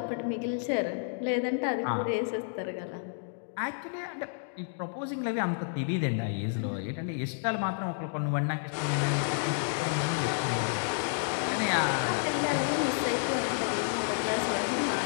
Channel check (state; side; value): silent; right; digital silence